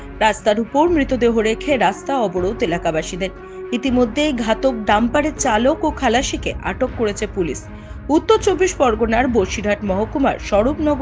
রাস্তার উপর মৃতদেহ রেখে রাস্তা অবরোধ এলাকাবাসীদের। ইতিমধ্যেই ঘাতক ডাম্পারের চালক ও খালাসিকে আটক করেছে পুলিশ। উত্তর 24 পরগনার বসিরহাট মহকুমার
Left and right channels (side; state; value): both; identical; correlation 1.00